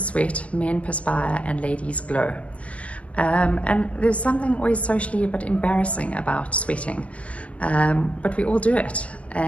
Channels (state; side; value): late; right; 0.065 ms